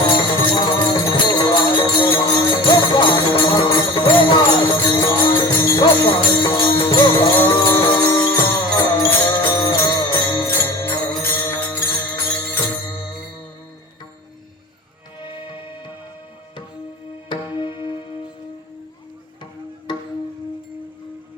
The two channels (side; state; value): both; normal; correlation 0.37